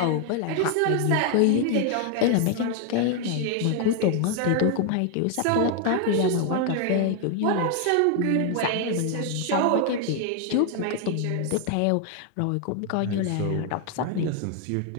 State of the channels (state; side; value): different; both; correlation 0.00